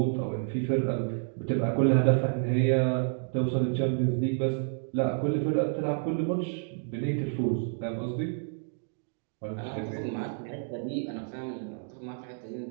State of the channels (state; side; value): silent; left; digital silence